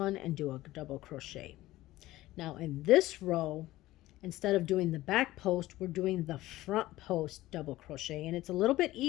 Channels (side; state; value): right; quieter; 16.7 dB